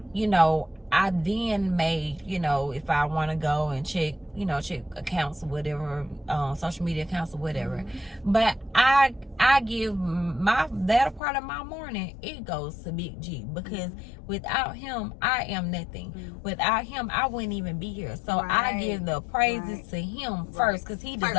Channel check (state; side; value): drops out; right; at 11.2 s